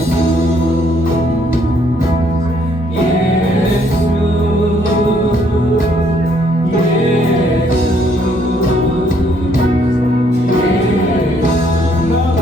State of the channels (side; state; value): both; normal; correlation 0.67